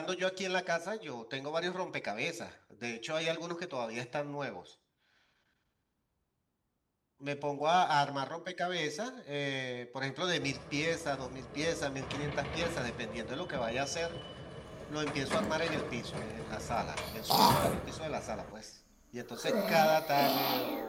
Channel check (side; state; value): both; identical; correlation 1.00